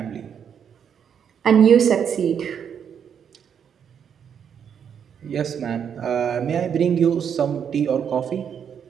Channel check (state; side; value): quieter; left; 7.9 dB